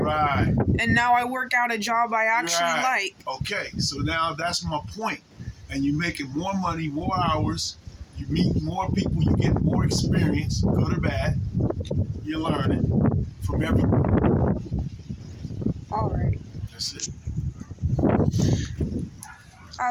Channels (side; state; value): both; identical; correlation 1.00